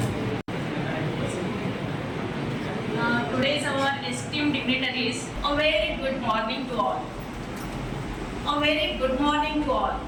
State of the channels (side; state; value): both; identical; correlation 1.00